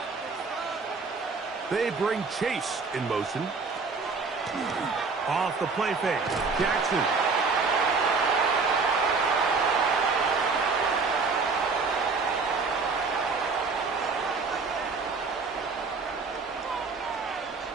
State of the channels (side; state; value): left; quieter; 4.5 dB